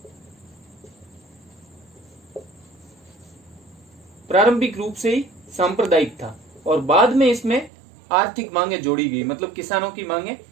प्रारंभिक रूप से ही सांप्रदायिक था, और बाद में इसमें आर्थिक मांगे जोड़ी गई, मतलब किसानों की मांगे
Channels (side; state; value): left; drops out; at 7.7 s